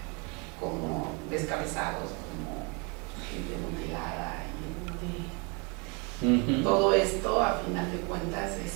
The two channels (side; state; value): left; quieter; 31.9 dB